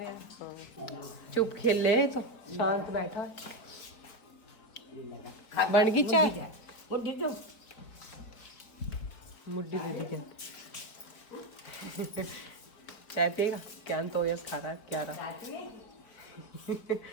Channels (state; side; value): late; right; 4.5 ms